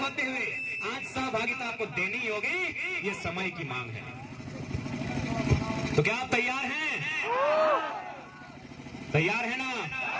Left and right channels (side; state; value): both; identical; correlation 1.00